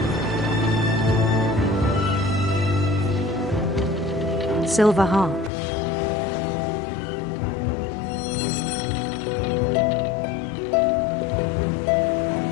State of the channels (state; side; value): drops out; right; at 5.5 s